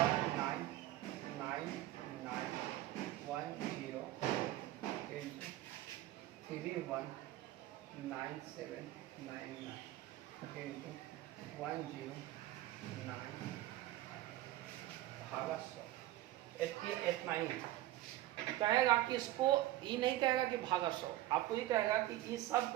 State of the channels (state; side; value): quieter; left; 15.2 dB